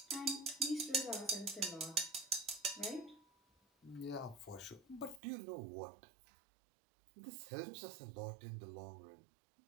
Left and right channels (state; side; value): drops out; left; at 5.2 s